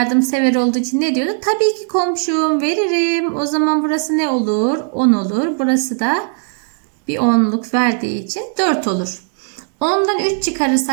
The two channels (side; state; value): left; silent; 57 dB below the other